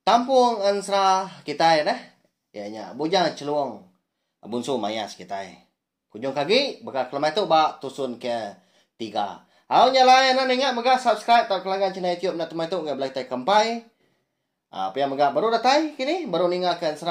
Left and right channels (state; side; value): identical; both; correlation 1.00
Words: Kampung Ensra kita dah. Ya nya bujang celuang bunsu mayas kita. Kunjung kaki, bakal kelemah tu bak tusun ke 3. Nyalain nan ingat mega subscribe tak kelanggan channel YouTube nak temai tu ngai belai tai kampai. Apa yang mega baru datai kini, baru ninggalkan